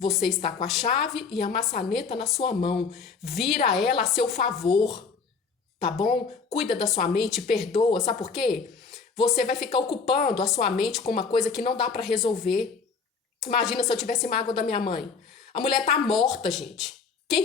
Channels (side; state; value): right; quieter; 5.3 dB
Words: está com a chave e a maçaneta na sua mão. Vira ela a seu favor, tá bom? Cuida da sua mente, perdoa. Sabe por quê? Você vai ficar ocupando a sua mente com uma coisa que não dá para resolver. Imagina se eu tivesse mágoa da minha mãe. A mulher tá morta, gente. Quem